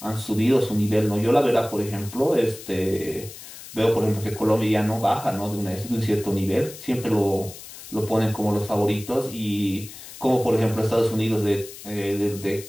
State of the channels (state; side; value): noise; left; hiss, 15 dB below the sound